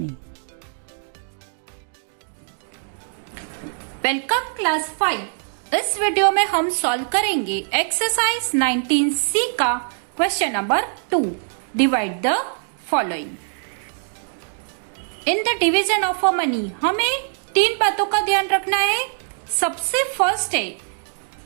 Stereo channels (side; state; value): left; silent; digital silence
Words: Welcome class 5। इस वीडियो में हम सॉल्व करेंगे एक्सरसाइज 19C का question number 2। Divide the following. In the division of a money हमें 3 बातों का ध्यान रखना है। सबसे फर्स्ट है,